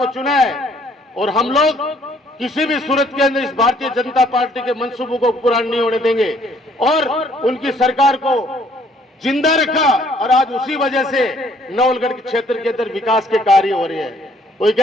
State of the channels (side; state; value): both; normal; correlation 0.63